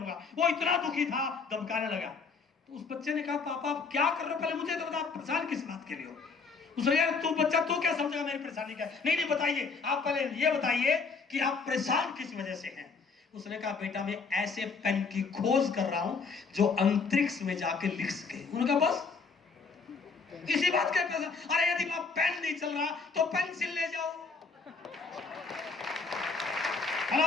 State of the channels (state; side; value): quieter; right; 4.7 dB